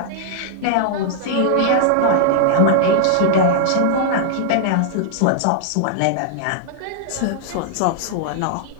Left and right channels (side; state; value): both; different; correlation -0.01